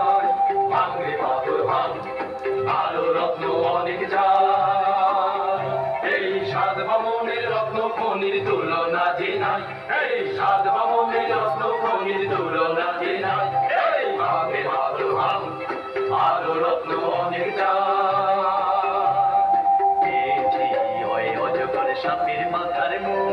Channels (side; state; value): both; identical; correlation 1.00